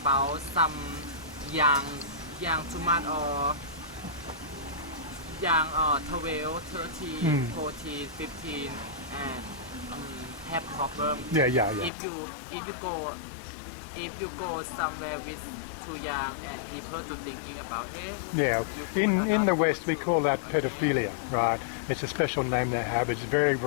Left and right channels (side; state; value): right; drops out; at 11.9 s